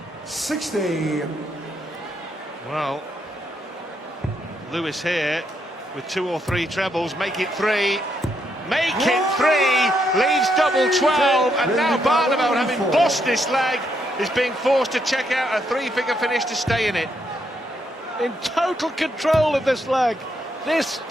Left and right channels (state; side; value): normal; both; correlation 0.77